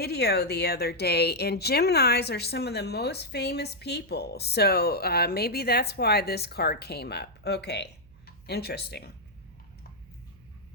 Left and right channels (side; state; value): right; noise; hum, 26 dB below the sound